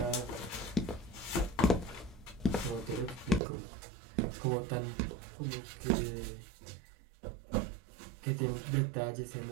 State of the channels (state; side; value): drops out; left; at 3.4 s